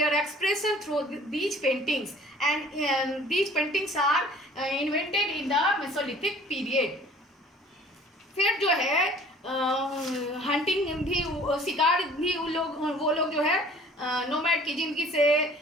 expression through these paintings and these paintings are invented in the Mesolithic period. फिर जो है हंटिंग भी, शिकार भी वो लोग जो है नोमैड की ज़िंदगी से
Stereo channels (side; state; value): both; normal; correlation 0.52